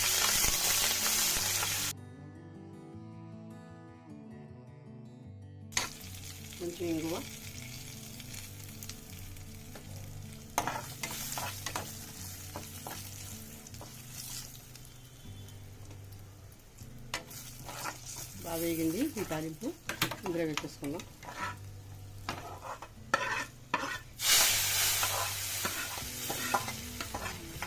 కొంచెం ఇంగువ, బాగా వేగింది. ఈ తాలింపు ఇందులో వేసేసుకుందాం.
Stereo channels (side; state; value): both; identical; correlation 1.00